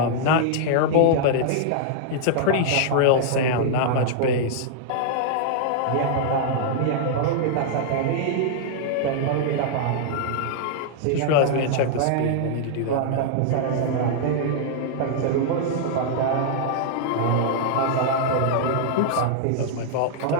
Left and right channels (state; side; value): different; both; correlation -0.01